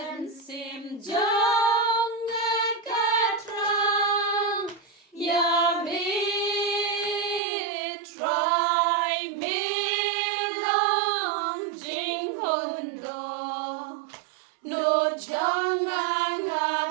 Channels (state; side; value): drops out; left; at 7.4 s